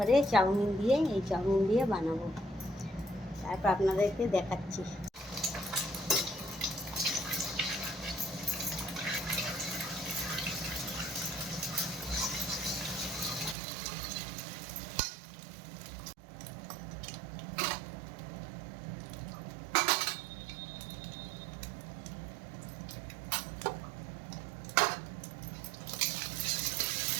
চাউমিন দিয়ে বানাবো। তারপর আপনাদেরকে দেখাচ্ছি।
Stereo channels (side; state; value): left; drops out; at 13.6 s